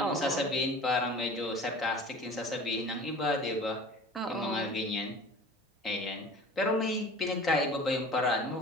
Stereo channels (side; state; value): both; normal; correlation 0.42